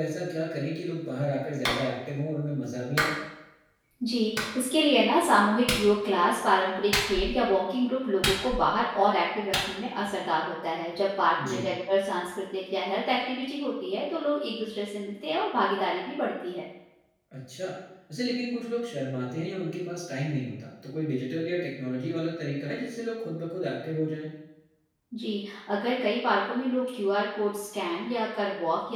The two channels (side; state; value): both; identical; correlation 1.00